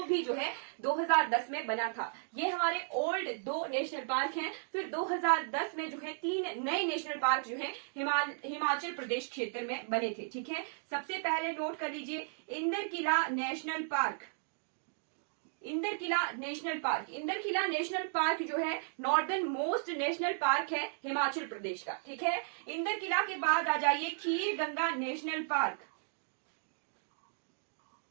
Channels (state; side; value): silent; left; digital silence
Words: भी जो है 2010 में बना था। ये हमारे ओल्ड 2 नेशनल पार्क हैं। फिर 2010 में जो है 3 नए नेशनल पार्क जो है हिमाचल प्रदेश क्षेत्र में बने थे, ठीक है। सबसे पहले नोट कर लीजिए Inderkilla national park. Inderkilla national park, Inderkilla national park जो है नॉर्दर्न मोस्ट नेशनल पार्क है हिमाचल प्रदेश का, ठीक है। इंदरकिला के बाद आ जाइए खीर गंगा नेशनल पार्क,